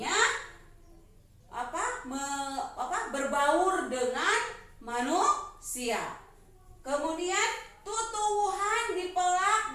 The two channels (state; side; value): identical; both; correlation 1.00